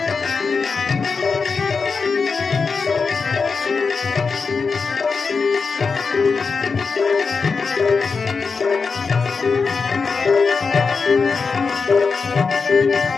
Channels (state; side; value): quieter; right; 4.9 dB